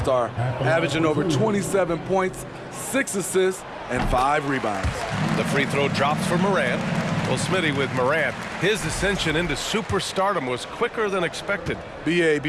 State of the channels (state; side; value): identical; both; correlation 1.00